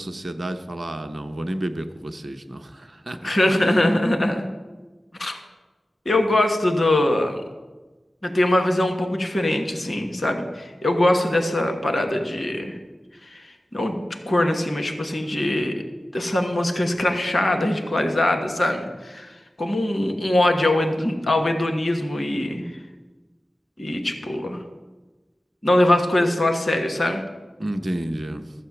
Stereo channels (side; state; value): both; normal; correlation 0.94